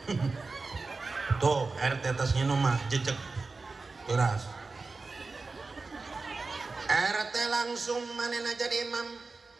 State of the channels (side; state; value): left; quieter; 3.9 dB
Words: Tuh, RT tas nginum mah jejek. Keras. RT langsung manena jadi imam.